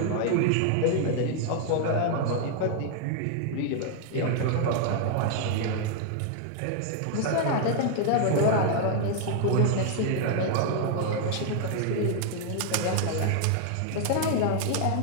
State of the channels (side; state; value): both; different; correlation 0.00